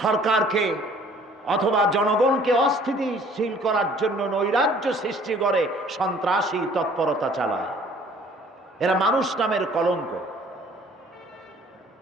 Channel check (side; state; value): both; normal; correlation 0.55